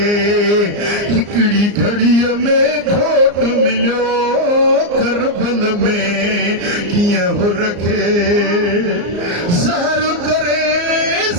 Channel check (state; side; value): late; left; 34 ms